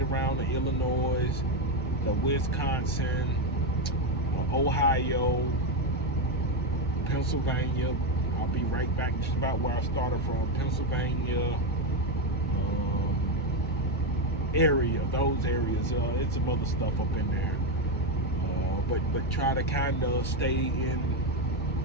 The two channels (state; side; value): normal; both; correlation 0.08